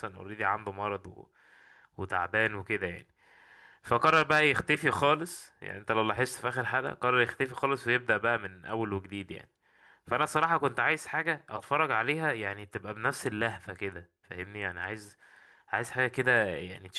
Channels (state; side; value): identical; both; correlation 1.00